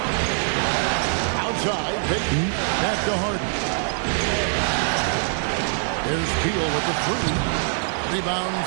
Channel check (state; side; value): silent; left; 63 dB below the other